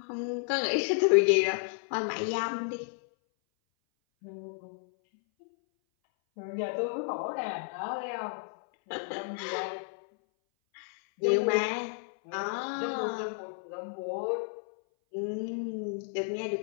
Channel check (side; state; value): right; silent; 57 dB below the other